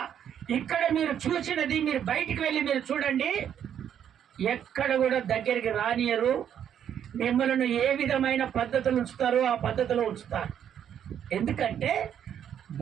ఇక్కడ మీరు చూసినది మీరు బయటికి వెళ్ళి మీరు చూడండి. ఎక్కడ కూడా దగ్గరికి రానియరు. మిమ్మల్ని ఏ విధమైన పద్ధతులు ఉంచుతారో ఆ పద్ధతిలో ఉంచుతారు. ఎందుకంటే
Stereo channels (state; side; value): quieter; left; 9.3 dB